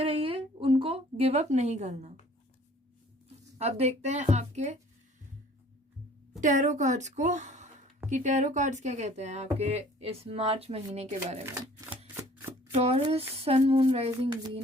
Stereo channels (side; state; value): both; normal; correlation 0.53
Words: रहिए, उनको गिव अप नहीं करना। अब देखते हैं आपके टैरो कार्ड्स को कि टैरो कार्ड्स क्या कहते हैं आपके इस मार्च महीने के बारे में। Taurus, sun, moon, rising,